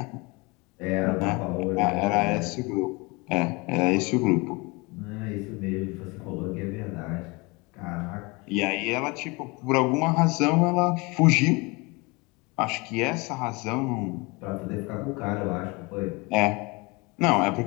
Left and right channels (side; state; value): right; quieter; 26.6 dB